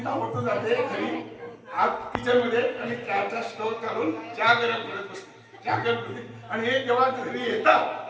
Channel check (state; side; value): identical; both; correlation 1.00